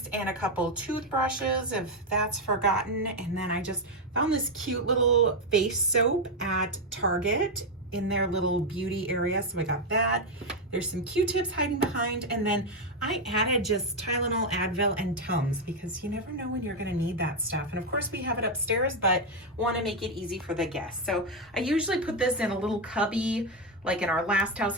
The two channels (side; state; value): both; normal; correlation 0.05